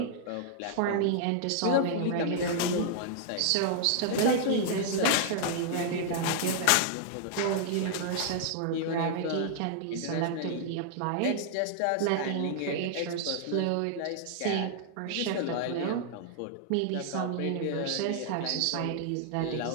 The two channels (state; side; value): different; both; correlation -0.01